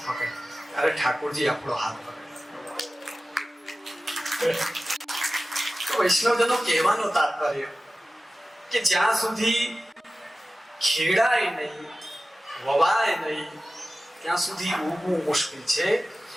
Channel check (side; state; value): both; normal; correlation 0.95